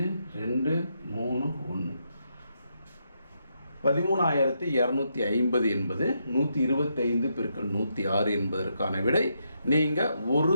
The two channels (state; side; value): inverted; both; correlation -0.80